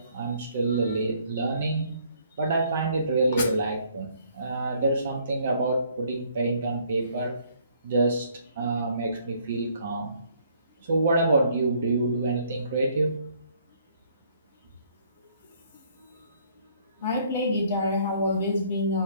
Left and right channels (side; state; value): both; inverted; correlation -0.63